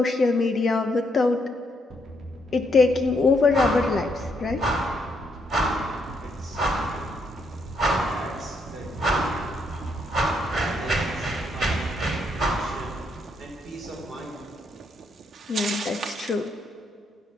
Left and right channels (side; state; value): both; normal; correlation 0.75